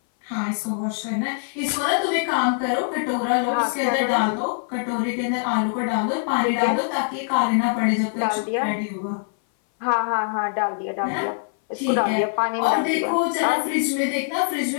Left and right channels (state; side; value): silent; right; 60 dB below the other